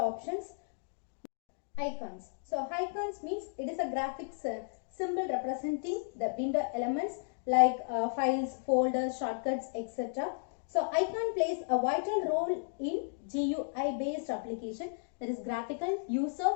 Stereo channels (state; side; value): silent; right; digital silence